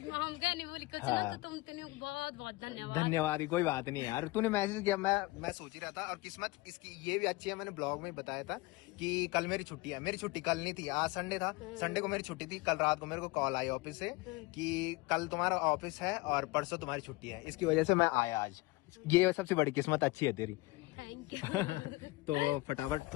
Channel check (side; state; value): right; quieter; 21.5 dB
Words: क्या नहीं बोली कुछ ना, तो तुम बहुत बहुत धन्यवाद। कोई बात नहीं यार, तूने मैसेज किया, मैं सोच ही रहा था। और किस्मत इसकी ये भी अच्छी है, मैंने ब्लॉग में बताया था कि कल मेरी छुट्टी है। मेरी छुट्टी कल नहीं थी, आज संडे था। संडे को छुट्टी थी। कल रात को मेरे को कॉल आई ऑफिस से कि कल तुम्हारा ऑफिस है और परसों तुम्हारी छुट्टी है। इसकी वजह से मैं आया आज। ये सबसे बड़ी किस्मत अच्छी है तेरी। तो फटाफट